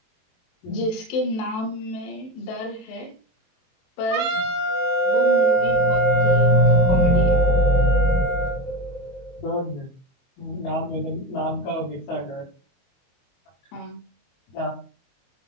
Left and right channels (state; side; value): late; right; 23 ms